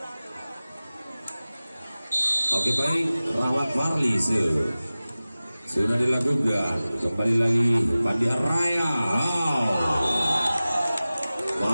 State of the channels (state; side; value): inverted; both; correlation -0.97